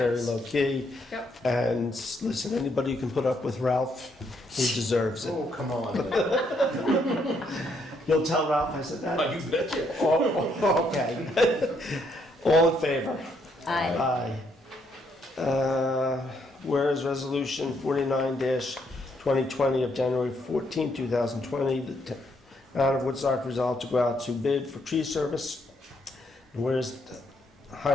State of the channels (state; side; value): normal; both; correlation 0.73